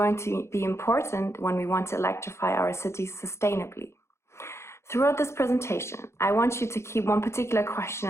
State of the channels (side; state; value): right; late; 0.13 ms